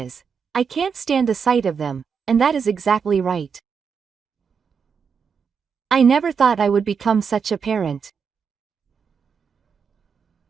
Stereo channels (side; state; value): left; quieter; 6.2 dB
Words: I can't stand the sight of them, and that is exactly right. I never thought I would become such a parent.